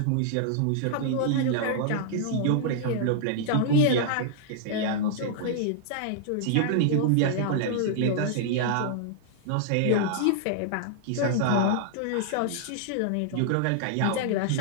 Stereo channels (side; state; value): both; different; correlation -0.01